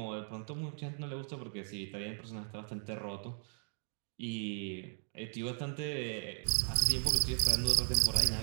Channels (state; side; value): silent; left; 53 dB below the other